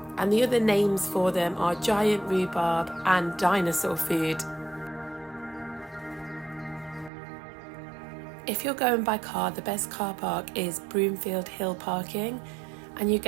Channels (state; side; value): drops out; left; at 7.1 s